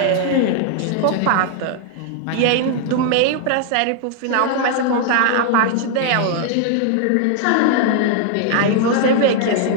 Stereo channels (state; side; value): different; both; correlation 0.00